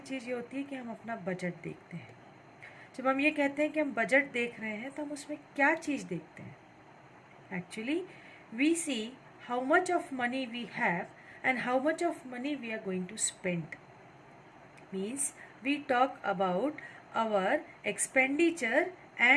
ये होती है कि हम अपना बजट देखते हैं. जब हम ये कहते हैं कि हम बजट देख रहे हैं तो हम उसमें क्या चीज़ देखते हैं? Actually, we see how much of money we have and how much of money we are going to spend. Means we talk about our expenditure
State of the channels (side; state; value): both; identical; correlation 1.00